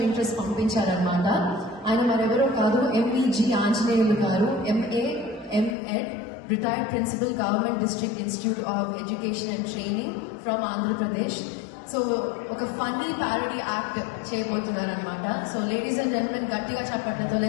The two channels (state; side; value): drops out; right; at 5.8 s